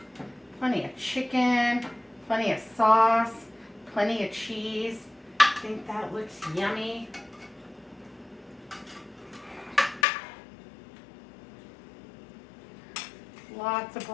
Plenty of chicken, plenty of sauce, plenty of cheese. I think that looks yummy. Lots of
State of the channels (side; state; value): right; drops out; at 10.1 s